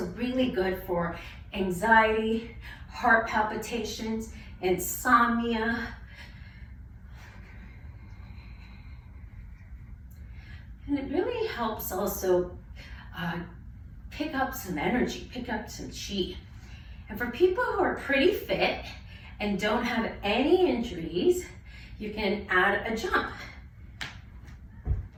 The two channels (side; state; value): both; identical; correlation 1.00